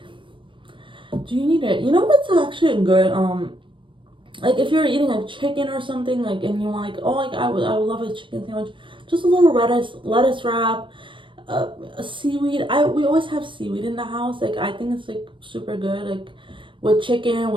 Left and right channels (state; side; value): late; left; 0.24 ms